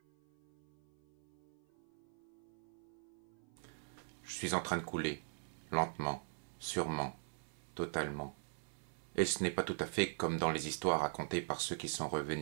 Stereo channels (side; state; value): left; silent; 50 dB below the other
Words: Je suis en train de couler, lentement, sûrement, totalement. Et ce n'est pas tout à fait comme dans les histoires racontées par ceux qui sont